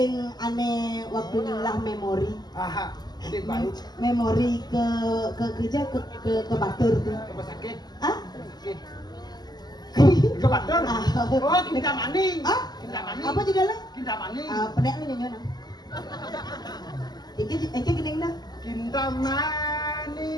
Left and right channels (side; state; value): right; late; 0.20 ms